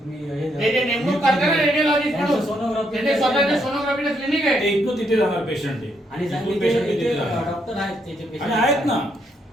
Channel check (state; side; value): normal; both; correlation 0.75